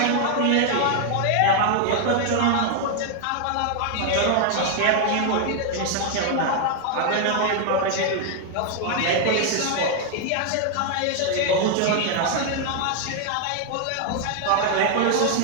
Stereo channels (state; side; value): different; both; correlation 0.00